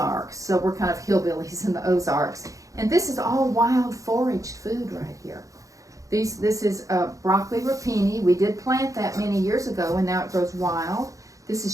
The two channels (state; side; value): late; left; 0.16 ms